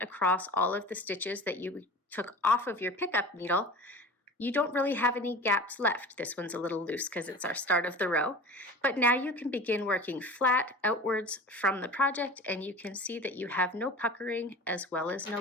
across all of the stitches that you took off of your pickup needle, you don't really have any gaps left. This one's a little loose because it's our start of the row, but now you can begin working flat outwards from the project, and you can see that you have no puckering as well as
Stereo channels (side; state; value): both; normal; correlation 0.37